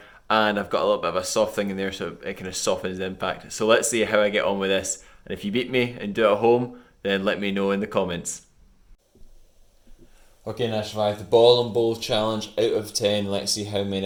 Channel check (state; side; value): identical; both; correlation 1.00